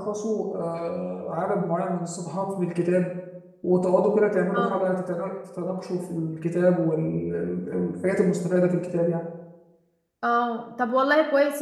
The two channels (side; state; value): both; identical; correlation 1.00